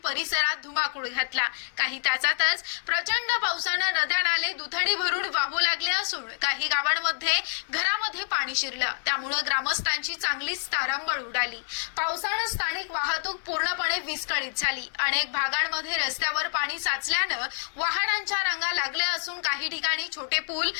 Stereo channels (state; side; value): silent; right; 60 dB below the other